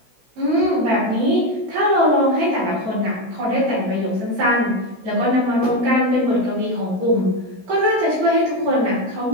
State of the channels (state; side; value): late; left; 16 ms